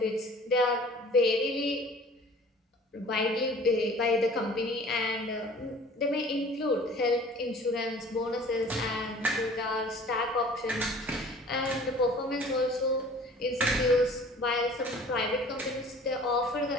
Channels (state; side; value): normal; both; correlation 0.48